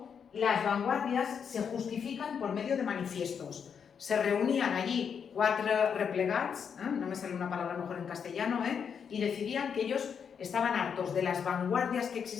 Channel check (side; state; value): right; quieter; 7.0 dB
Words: las vanguardias se justifican por medio de manifiestos. Se reunían allí 4 replegats, no me sale una palabra mejor en castellano, y decidían que ellos estaban hartos de las vanguardias que